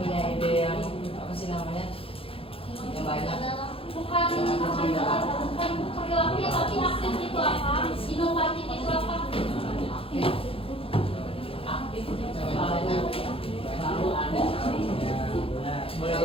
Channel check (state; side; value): late; right; 0.27 ms